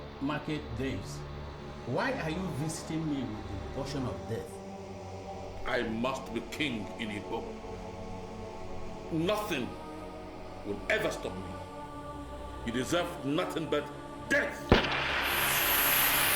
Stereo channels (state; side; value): identical; both; correlation 1.00